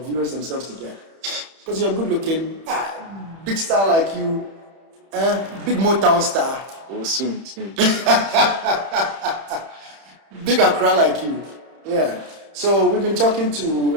viewers themselves to get. Because you're good looking, big star like you, big Motown star. Oh, soon. Big Accra like you. Yeah. So we've been talking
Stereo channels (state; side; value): late; left; 31 ms